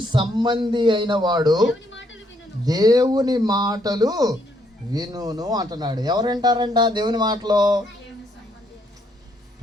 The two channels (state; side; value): normal; both; correlation 0.72